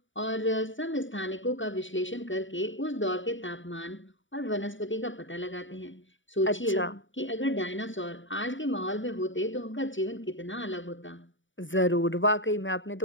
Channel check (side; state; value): right; late; 0.56 ms